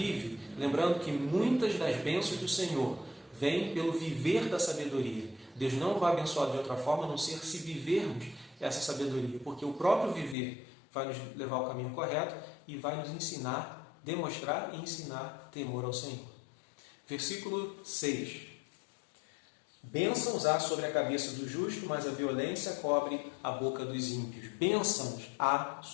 lembrando que muitas das bênçãos do Senhor vêm pelo viver da sabedoria. Deus não vai abençoar de outra forma, a não ser se vivermos essa sabedoria, porque o próprio viver vai nos levar ao caminho correto e vai nos ensinar, demonstrar e ensinar temor ao Senhor. Versículo 6. Bênçãos há sobre a cabeça do justo, mas a violência cobre a boca dos ímpios. Bênçãos há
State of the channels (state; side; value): drops out; right; at 10.4 s